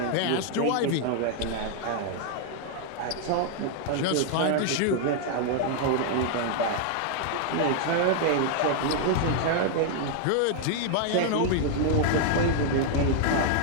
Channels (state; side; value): different; both; correlation 0.00